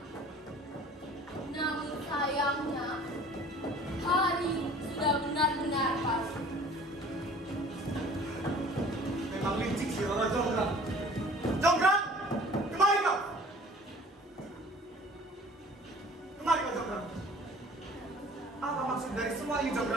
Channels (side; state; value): both; normal; correlation 0.49